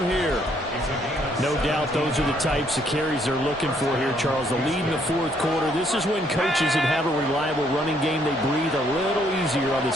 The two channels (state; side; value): normal; both; correlation 0.68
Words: here. No doubt those are the types of carries they're looking for here, Charles. The lead in the fourth quarter. This is when coaches that have a reliable running game, they breathe a little easier on the